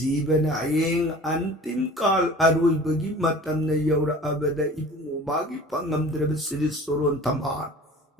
Ayeng Antim Kal Arui Bagi Matam Na Yaura Abada Ibn Umagi Pangamdraba Sri Soron Tamar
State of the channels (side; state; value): both; normal; correlation 0.43